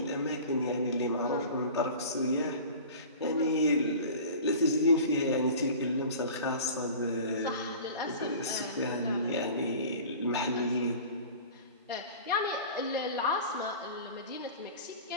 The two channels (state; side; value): inverted; both; correlation -0.39